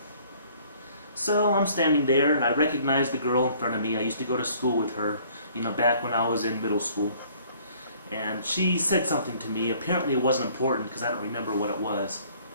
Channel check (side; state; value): both; inverted; correlation -0.57